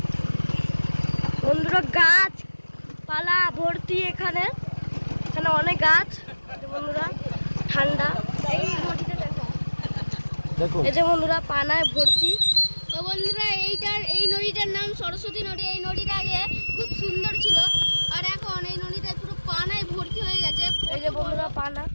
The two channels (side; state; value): both; inverted; correlation -1.00